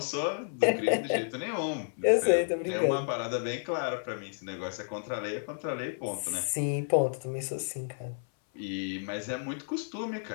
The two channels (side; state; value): right; silent; 57 dB below the other